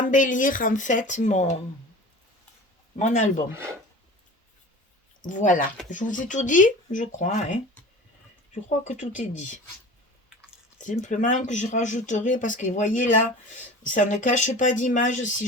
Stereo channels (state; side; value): normal; both; correlation 0.38